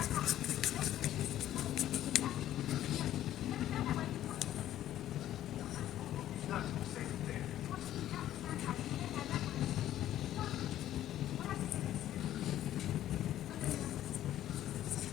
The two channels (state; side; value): quieter; right; 12.5 dB